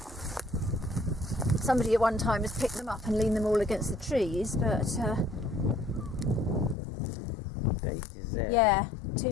Somebody at one time has picked them up and leaned them all against the trees, but Date is there. yeah,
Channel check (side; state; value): right; drops out; at 6.8 s